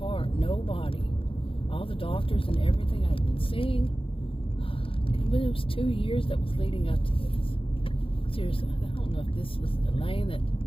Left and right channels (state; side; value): late; right; 0.26 ms